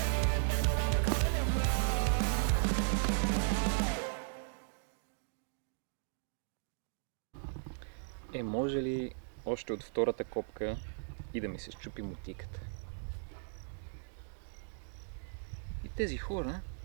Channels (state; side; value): silent; left; digital silence